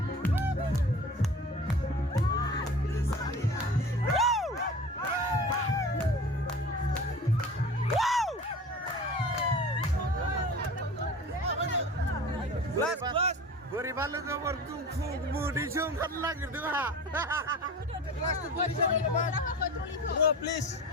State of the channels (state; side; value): normal; both; correlation 0.38